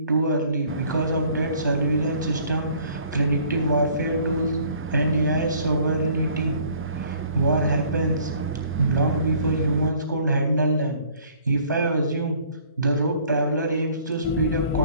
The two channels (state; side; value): inverted; both; correlation -0.56